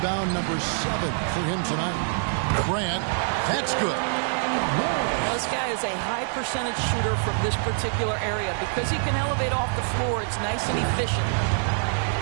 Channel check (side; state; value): left; silent; digital silence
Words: number 7 for him tonight. Grant, that's good. This guy is a high percentage shooter from this particular area. Because he can elevate off the floor, it's nice and efficient.